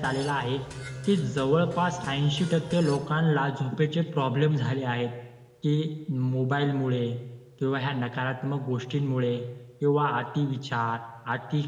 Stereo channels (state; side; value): identical; both; correlation 1.00